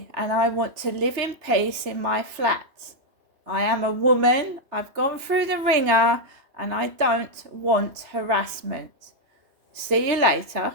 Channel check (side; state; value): left; late; 3.2 ms